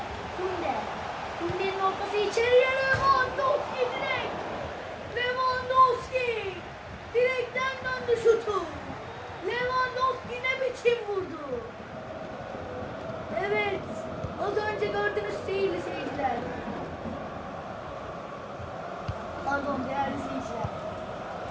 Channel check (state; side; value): identical; both; correlation 1.00